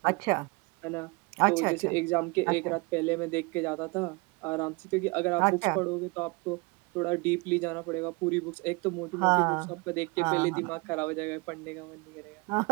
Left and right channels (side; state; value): left; quieter; 27.7 dB